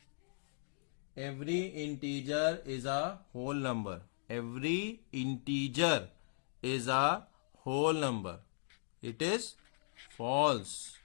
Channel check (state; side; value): silent; right; digital silence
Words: every integer is a whole number. Every integer is a whole number. It is false.